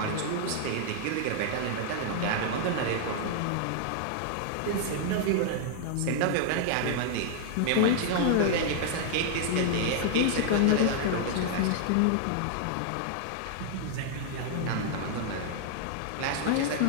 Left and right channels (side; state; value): both; different; correlation 0.00